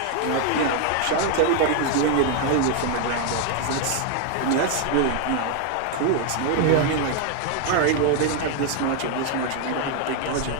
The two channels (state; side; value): different; both; correlation 0.00